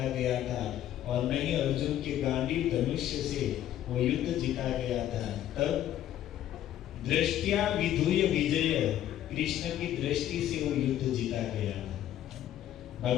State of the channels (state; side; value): quieter; right; 11.9 dB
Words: गया था और न ही अर्जुन के गांडीव धनुष्य से वो युद्ध जीता गया था। तब दृष्टिया विधुय विजय, कृष्ण की दृष्टि से वो युद्ध जीता गया।